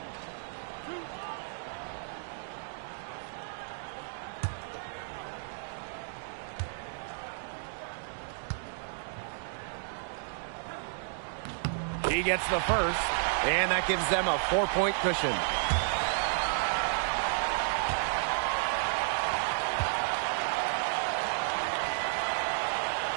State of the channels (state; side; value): silent; left; digital silence